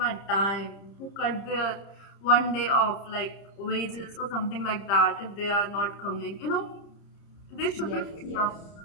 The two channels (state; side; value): late; right; 30 ms